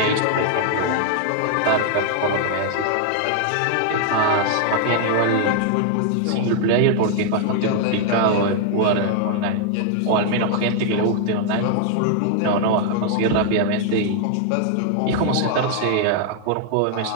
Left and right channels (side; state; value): both; different; correlation 0.00